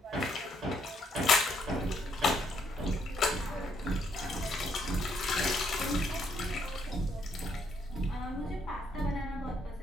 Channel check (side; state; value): both; normal; correlation 0.71